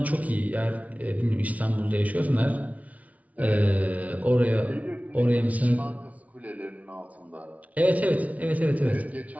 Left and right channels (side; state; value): left; late; 0.069 ms